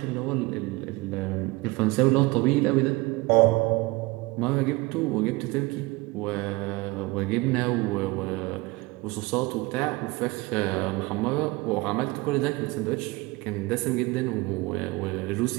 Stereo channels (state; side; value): quieter; left; 23.1 dB